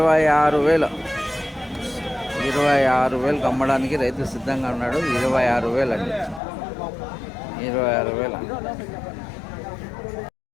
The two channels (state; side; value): drops out; right; at 6.4 s